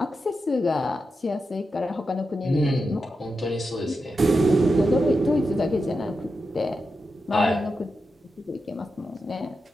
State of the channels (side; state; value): both; normal; correlation 0.88